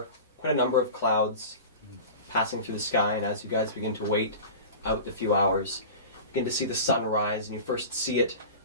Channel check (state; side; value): inverted; both; correlation -0.34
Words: quite a number of clouds passing through the sky, and as you guys begin to wait out the few hours, you begin to see the sun rise, and you first see it